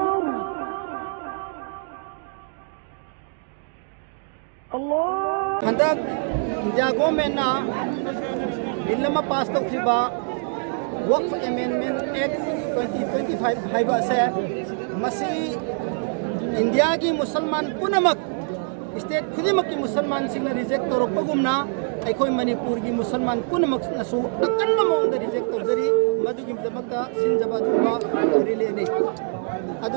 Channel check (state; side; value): silent; left; 56 dB below the other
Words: Allah. Handak Indiago mena Billama passed of Hiba Waqf Amendment Act 2025 Haiba se Masi India ki Musalman punamak state खुदिमक की मुसलमान सिंह ने reject तौर पर गुमना ऐकोई मणिपुर की मुसलमान पुनमक नसु अकन्न मोंग reject तौर जरी मधु की दमकता सिंजबा दुबा रिले ने